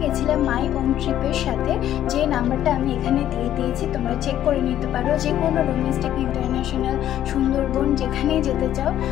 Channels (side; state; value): right; quieter; 11.7 dB